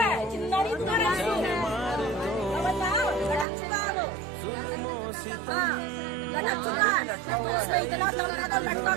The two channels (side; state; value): left; drops out; at 3.5 s